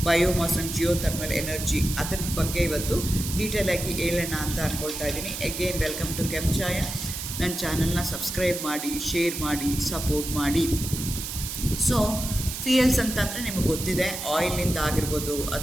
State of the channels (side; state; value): right; noise; hiss, 6 dB below the sound